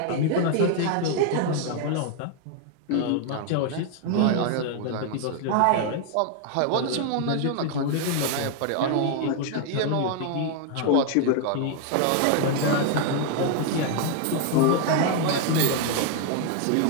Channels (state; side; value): different; both; correlation 0.00